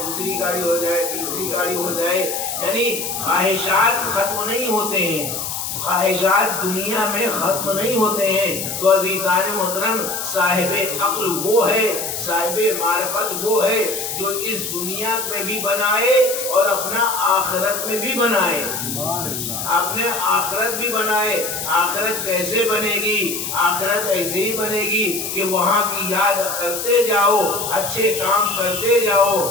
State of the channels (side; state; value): left; noise; hiss, 4 dB below the sound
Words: دوسری گاڑی ہو جائے، تیسری گاڑی ہو جائے. یعنی خواہشات ختم نہیں ہوتے ہیں، خواہشات دنیا میں ختم نہیں ہوتے ہیں. تو عزیزان محترم، صاحب عقل وہ ہے، صاحب معرفت وہ ہے جو اس دنیا میں بھی بنائے اور اپنا آخرت میں بھی بنائے، اپنے آخرت بھی بنائے. آخرت کیسے بنے گی؟ آخرت ایسے ہی بنے گی کہ وہاں کی یاد کرتے جاؤ، اچھے کام کرتے جاؤ،